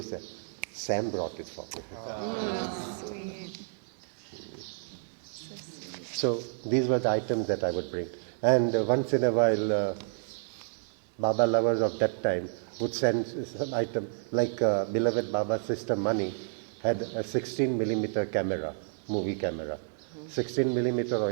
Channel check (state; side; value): silent; left; digital silence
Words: say, Sam brought it for me. Sweet. So these were the items that I would bring. And once in a while, Baba lovers of that time would send some item, like beloved Baba's sister Mani had a 16mm camera, movie camera. 16mm or